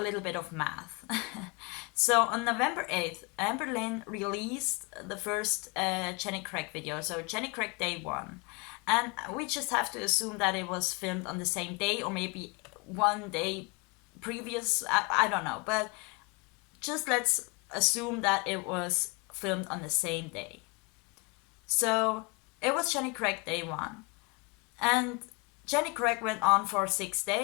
little bit of math. So on November 8th, Amberlynn released the first Jenny Craig video, so Jenny Craig Day 1. And we just have to assume that it was filmed on the same day, or maybe one day previous, I don't know. But just let's assume that it was filmed on the same day. So it was Jenny Craig Day 1. And Jenny Craig went on for 6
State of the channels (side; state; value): right; quieter; 29.4 dB